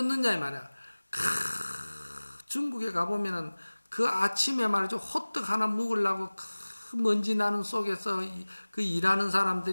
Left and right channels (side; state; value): both; inverted; correlation -1.00